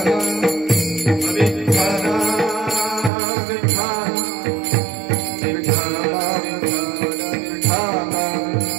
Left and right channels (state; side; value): drops out; left; at 3.1 s